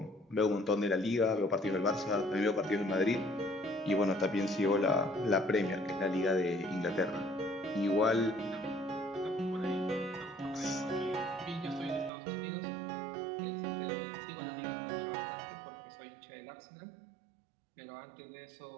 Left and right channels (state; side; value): drops out; left; at 12.1 s